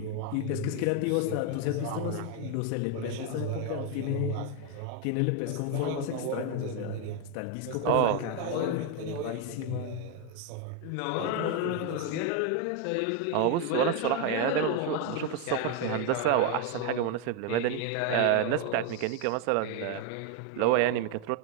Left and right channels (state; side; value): different; both; correlation 0.01